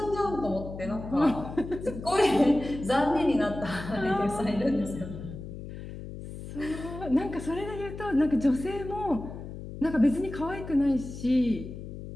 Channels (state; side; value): noise; left; hum, 11 dB below the sound